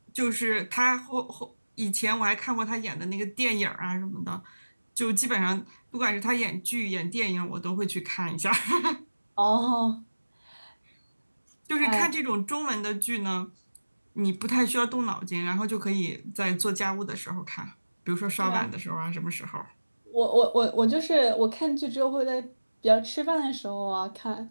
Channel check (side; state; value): both; inverted; correlation -1.00